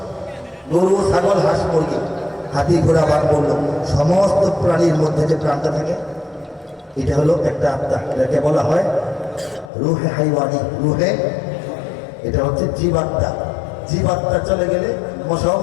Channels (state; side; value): drops out; right; at 9.7 s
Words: গরু, ছাগল, হাঁস, মুরগি, হাতি, ঘোড়া, বাঘ, বলল, সমস্ত প্রাণীর মধ্যে যে প্রাণটা থাকে এটা হলো একটা আত্মা। এটাকে বলা হয় রুহে হাইওয়ানি। রুহে, এটা হচ্ছে জীবাত্মা। জীবাত্মা চলে গেলে মশাও